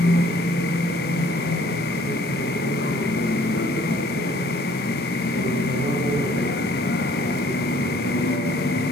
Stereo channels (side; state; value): both; normal; correlation 0.57